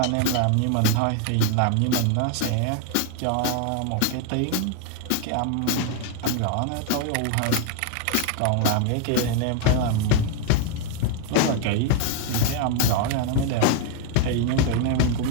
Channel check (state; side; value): different; both; correlation 0.01